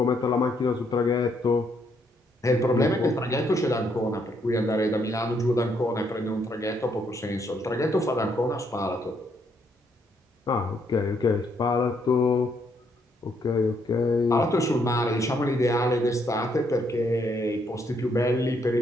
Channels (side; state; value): both; normal; correlation 0.73